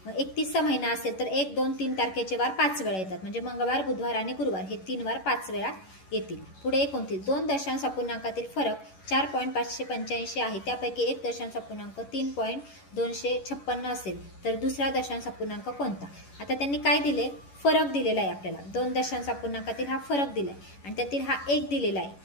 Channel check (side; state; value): right; late; 11 ms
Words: मग 31चा महिना असेल तर 1, 2, 3 तारखेचे वार 5 वेळा येतात, म्हणजे मंगळवार, बुधवार आणि गुरुवार हे 3 वार 5 वेळा येतील. पुढे 29. 2 दशांश अपूर्णांकातील फरक 4.585 आहे, त्यापैकी 1 दशांश अपूर्णांक 3.256 असेल तर दुसरा दशांश अपूर्णांक कोणता? आता त्यांनी काय दिले? फरक दिलेला आहे आपल्याला. 2 दशांश अपूर्णांकातील हा फरक दिलाय आणि त्यातील हा 1 दिलेला आहे.